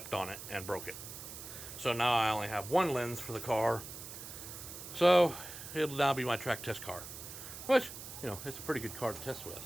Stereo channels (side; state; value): right; noise; hiss, 11 dB below the sound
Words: on it and broke it. So now I only have one lens for the car. So it'll now be my track test car, which, it's a pretty good car to test with.